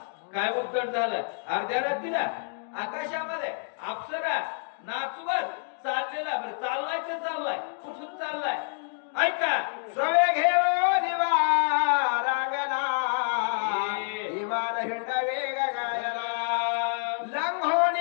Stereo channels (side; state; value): right; silent; digital silence